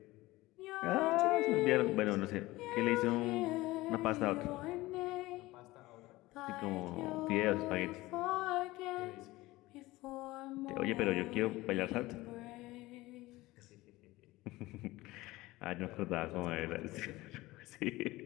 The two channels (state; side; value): quieter; right; 19.2 dB